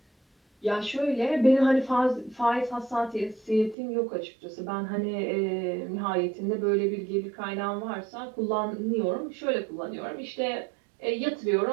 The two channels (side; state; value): left; drops out; at 3.8 s